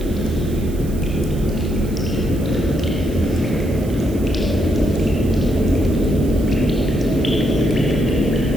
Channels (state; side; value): noise; right; hiss, 20 dB below the sound